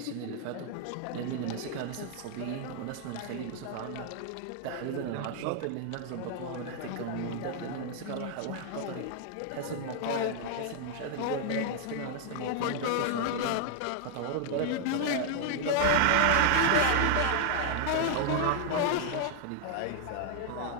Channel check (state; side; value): different; both; correlation 0.00